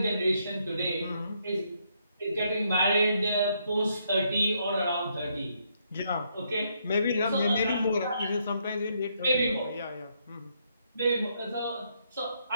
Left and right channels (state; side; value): inverted; both; correlation -0.74